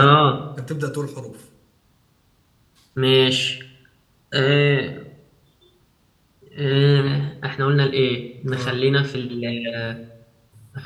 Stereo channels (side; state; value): both; identical; correlation 1.00